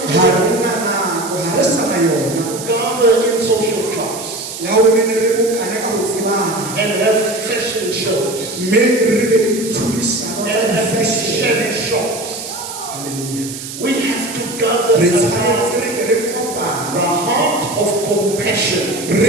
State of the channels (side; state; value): right; noise; hiss, 10 dB below the sound